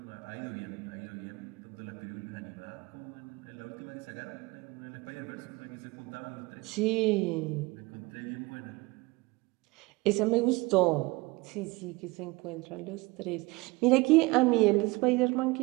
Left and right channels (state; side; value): quieter; left; 23.6 dB